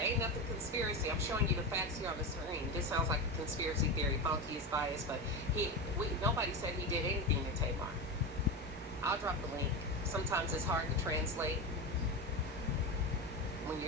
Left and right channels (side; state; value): both; normal; correlation 0.19